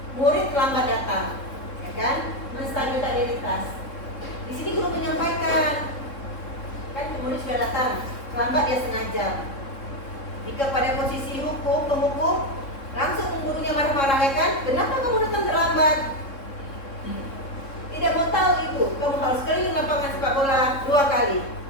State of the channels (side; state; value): right; late; 3.7 ms